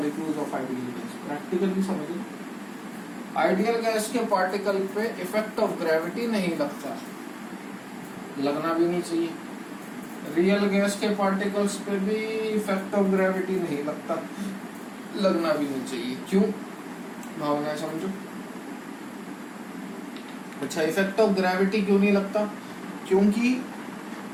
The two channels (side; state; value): both; identical; correlation 1.00